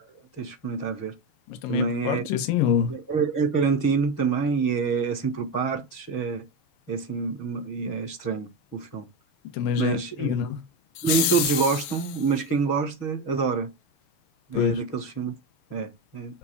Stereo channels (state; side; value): late; right; 7.6 ms